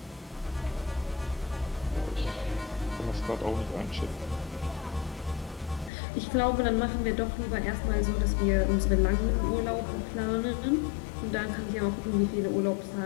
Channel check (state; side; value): drops out; right; at 5.9 s